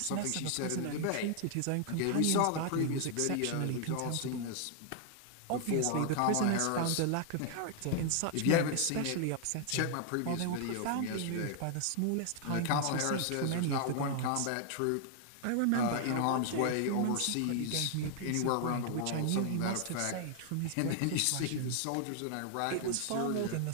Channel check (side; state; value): both; different; correlation 0.00